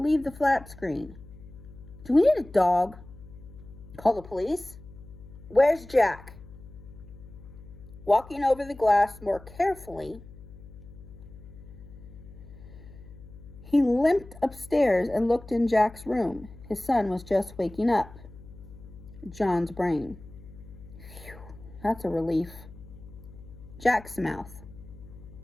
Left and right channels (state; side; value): noise; left; hum, 18 dB below the sound